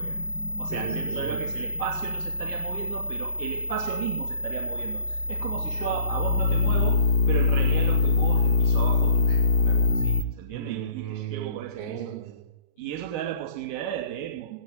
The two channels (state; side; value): late; right; 19 ms